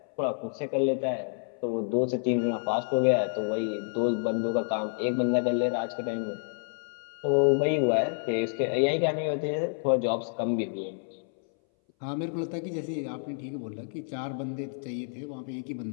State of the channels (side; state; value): right; silent; 59 dB below the other